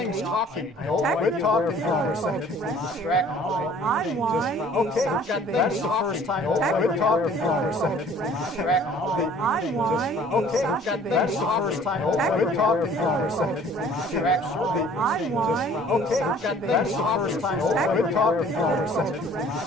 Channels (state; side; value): normal; both; correlation 0.53